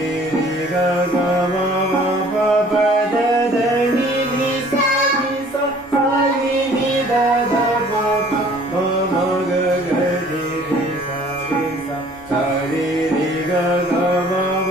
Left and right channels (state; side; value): normal; both; correlation 0.53